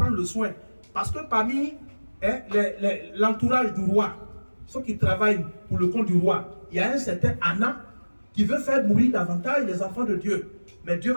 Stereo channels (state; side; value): inverted; both; correlation -1.00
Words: le soin. Parce que parmi l'entourage du roi, ceux qui travaillent pour le compte du roi, il y a un certain Anna qui veut faire mourir davantage les enfants de Dieu. Mais Dieu